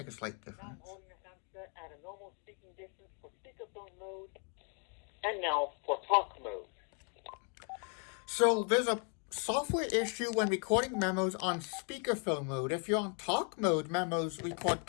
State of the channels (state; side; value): quieter; right; 37.2 dB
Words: a slight Now I'm difference. holding the handset at a normal speaking distance for speakerphone mode. And now for talk mode. So there's a software issue when recording memos on speakerphone mode. If you're on talk mode, memos record